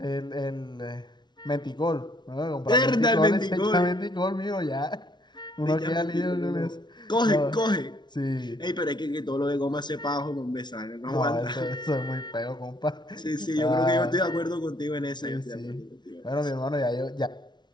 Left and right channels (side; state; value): right; late; 0.21 ms